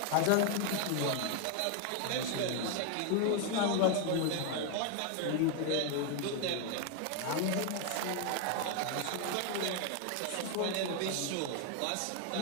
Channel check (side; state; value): both; different; correlation 0.01